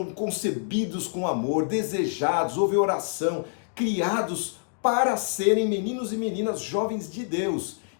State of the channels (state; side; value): silent; right; digital silence